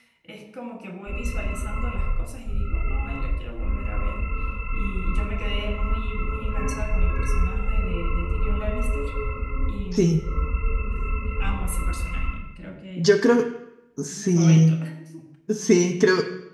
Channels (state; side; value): identical; both; correlation 1.00